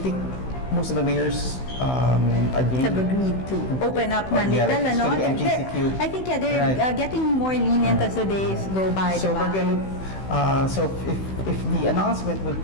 most of the mayors have agreed to open up na little, MGCQ. I think they're getting more lenient as the days go by. So diba? we're going to. So if the announcement would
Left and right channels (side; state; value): right; late; 16 ms